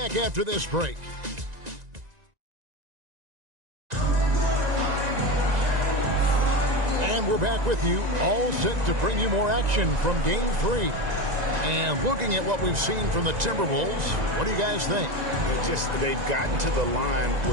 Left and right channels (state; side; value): late; left; 1.9 ms